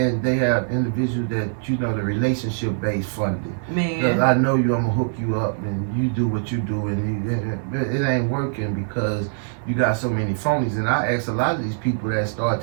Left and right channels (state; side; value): silent; left; 55 dB below the other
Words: They have individuals that, the relationship-based funding. Man. Because I know you, I'm going to hook you up, and you do what you do, and it ain't working because you got so many phonies. And I ask a lot of these people that start